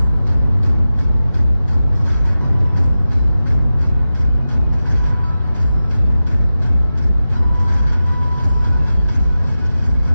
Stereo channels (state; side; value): inverted; both; correlation -0.94